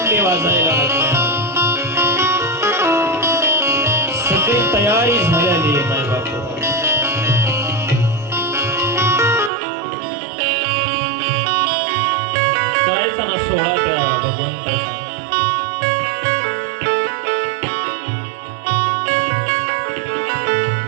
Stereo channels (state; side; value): drops out; left; at 9.5 s